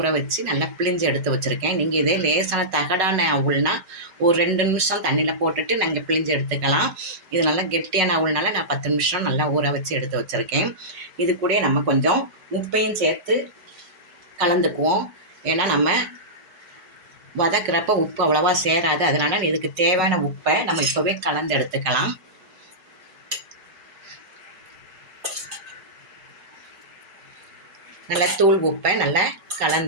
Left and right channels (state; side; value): late; left; 5.4 ms